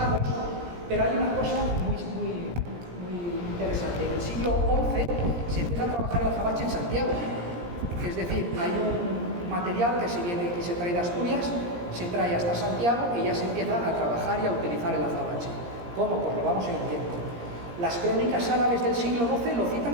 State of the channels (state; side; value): late; left; 17 ms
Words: pero hay una cosa muy interesante. En el siglo XI se empieza a trabajar el azabache en Santiago, es decir, hay un material que se trae de Asturias, se trae hasta Santiago y ya se empieza a trabajar y a utilizar el azabache. ¿Cómo? Pues lo vamos a ir viendo. Las crónicas árabes del siglo XII lo citan